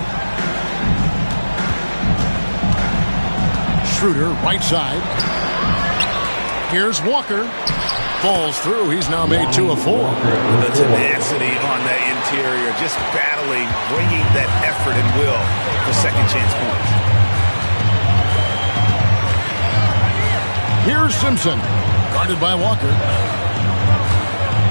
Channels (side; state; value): both; inverted; correlation -1.00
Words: Schroeder, right side. Here's Walker. Falls through. He's now made 2 of 4. The tenacity on that interior, just battling, bringing that effort and will for second chance points. Here's Simpson, guarded by Walker.